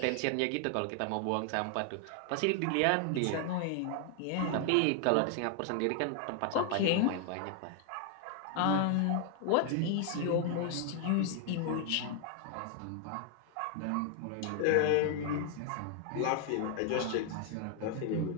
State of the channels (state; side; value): different; both; correlation 0.00